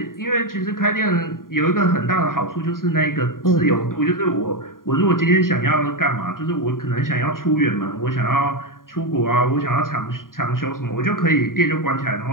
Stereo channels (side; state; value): right; late; 0.91 ms